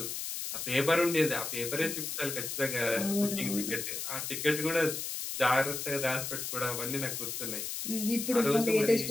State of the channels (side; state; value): left; noise; hiss, 4 dB below the sound